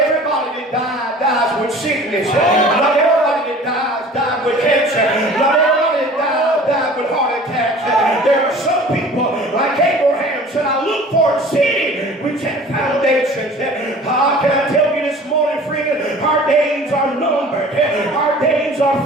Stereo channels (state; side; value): normal; both; correlation 0.45